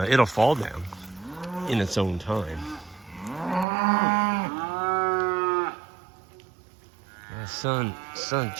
It'll fall down in its own time. The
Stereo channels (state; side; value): drops out; left; at 3.7 s